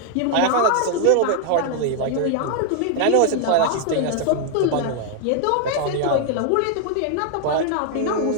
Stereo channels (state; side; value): different; both; correlation 0.00